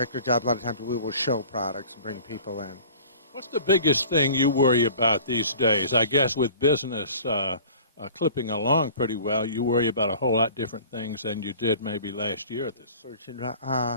jobs, a lot of times we will show products and bring people in. What's the biggest thing you worry about these days? I guess with business clipping along pretty well, you worry about a whole lot different things than you did maybe last year at this.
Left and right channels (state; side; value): inverted; both; correlation -0.45